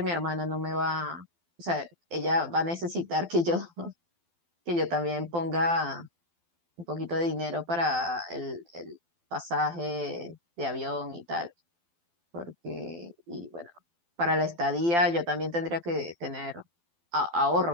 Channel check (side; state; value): left; late; 12 ms